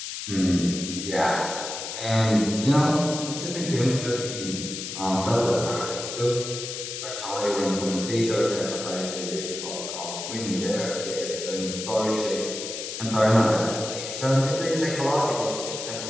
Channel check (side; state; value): left; noise; hiss, 7 dB below the sound